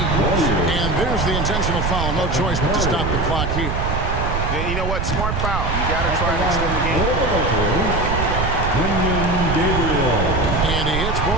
And there's the intentional foul. No choice but to stop the clock here. Yeah, you know what? Smart foul. You got to try to extend the game. And he hits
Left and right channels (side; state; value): right; noise; rumble, 1 dB below the sound